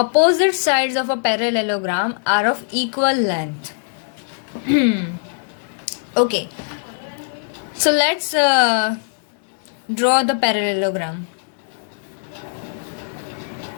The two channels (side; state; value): right; silent; digital silence